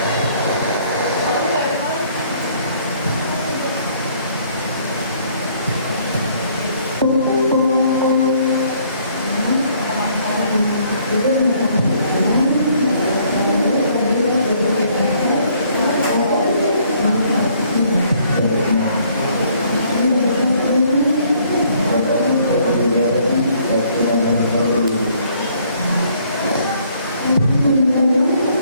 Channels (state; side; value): inverted; both; correlation -0.63